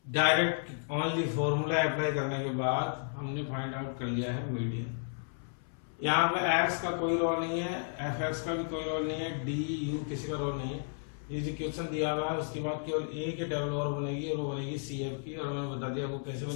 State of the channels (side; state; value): right; silent; 56 dB below the other